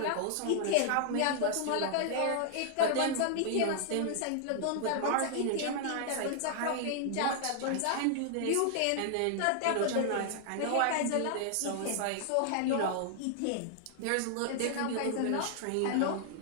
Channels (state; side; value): different; both; correlation 0.00